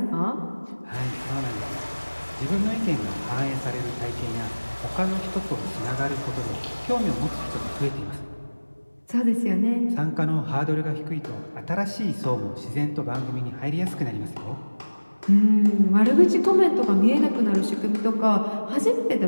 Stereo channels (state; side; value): inverted; both; correlation -1.00